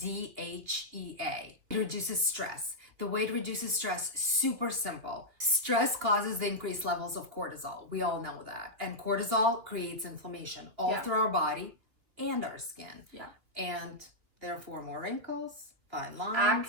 DHEA. It reduces stress. The way it reduces stress, super simple. Stress causes the increased levels of cortisol. We all know that. And cortisol creates inflammation all through our body and our skin. Yeah. And therefore more wrinkles, fine lines,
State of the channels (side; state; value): left; late; 2.9 ms